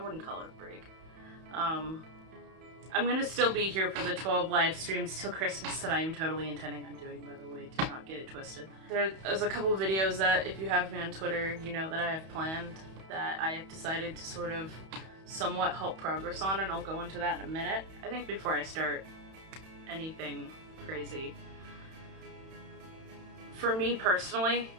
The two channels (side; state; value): left; late; 31 ms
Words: call it a break. I'm gonna still be here for the 12 live streams till Christmas that I am totally intending on doing, by the way, do not get it twisted. There's a couple of videos that, if you have me on Twitter, you know that I have planned, that I have decided to sort of somewhat halt progress on, and I'll go into that in a minute. I think before I start anything crazy, for me personally,